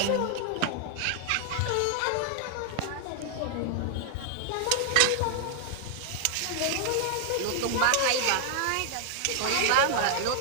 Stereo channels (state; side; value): different; both; correlation 0.00